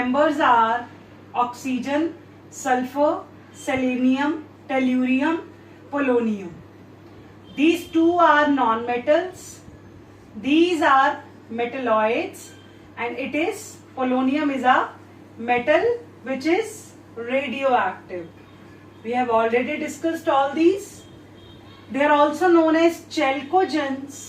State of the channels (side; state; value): both; identical; correlation 1.00